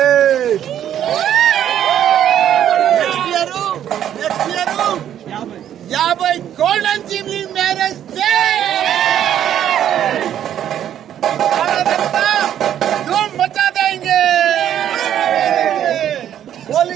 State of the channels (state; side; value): quieter; left; 10.5 dB